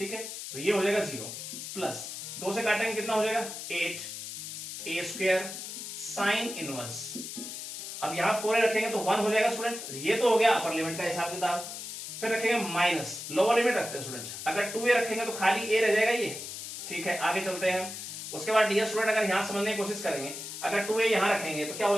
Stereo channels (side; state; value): left; noise; hiss, 8 dB below the sound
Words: है, तो ये हो जाएगा 0 प्लस 2 से काटेंगे कितना हो जाएगा 8a स्क्वायर साइन इनवर्स, अब यहां 4a रखेंगे तो 1 हो जाएगा स्टूडेंट, ये तो हो गया अपर लिमिट का हिसाब किताब। फिर रखेंगे माइनस, लोअर लिमिट रखते हैं स्टूडेंट, अगर 2a रखेंगे तो खाली a रह जाएगा ये, ठीक है, आगे चलते हैं। उसके बाद डियर स्टूडेंट अगर यहां समझने की कोशिश करेंगे, अगर 2a यहां रखेंगे तो क्या हो